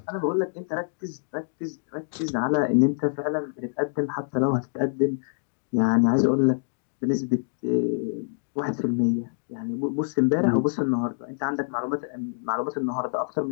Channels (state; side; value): silent; right; digital silence